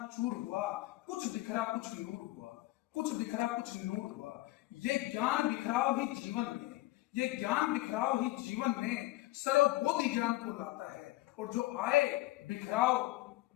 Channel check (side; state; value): right; quieter; 18.4 dB